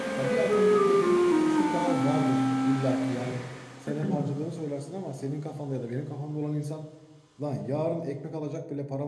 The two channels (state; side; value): identical; both; correlation 1.00